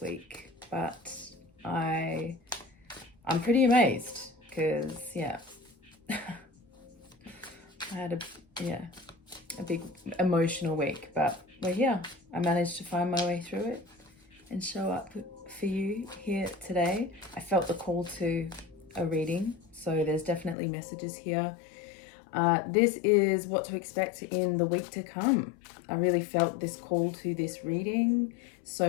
week, but I'm pretty amazed because I had a big emotional week, but we're here. I managed to find my way through it and show up for you here today. I felt the call to a reading, so there's definitely messages here. This is what to expect in the week to come. I really felt this call to this reading.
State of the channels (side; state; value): right; drops out; at 20.6 s